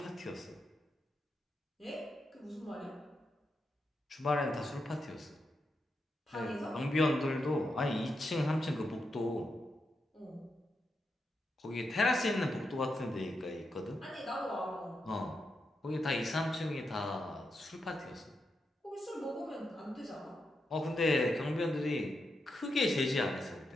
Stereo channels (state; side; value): normal; both; correlation 0.85